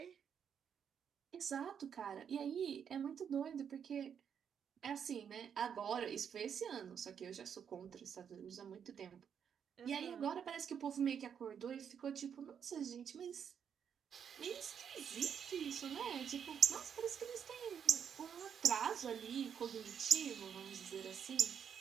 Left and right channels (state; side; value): quieter; left; 7.8 dB